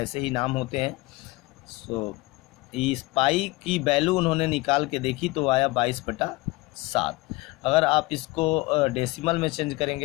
ही नाम होते हैं। सो इस पाई की वैल्यू उन्होंने निकाल के देखी तो आया 22/7। अगर आप इसको डेसिमल में चेंज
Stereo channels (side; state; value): right; quieter; 21.7 dB